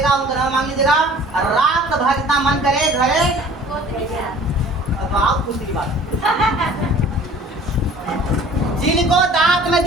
उनका नाम मांग लीजिएगा। रात भर जितना मन करे घरे, अब आप दूसरी बात, जिनको दांत में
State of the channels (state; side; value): normal; both; correlation 0.49